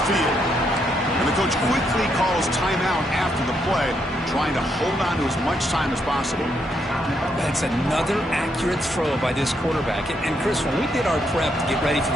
field. And the coach quickly calls timeout after the play, trying to hold on to as much time as possible. That's another accurate throw by this quarterback. And Chris, when we did our prep to get ready for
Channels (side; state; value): both; normal; correlation 0.77